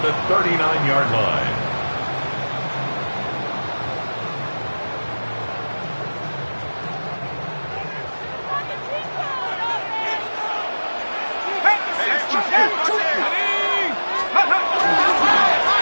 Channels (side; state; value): both; inverted; correlation -1.00